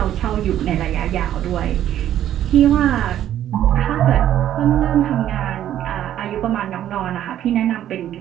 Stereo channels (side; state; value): left; quieter; 11.6 dB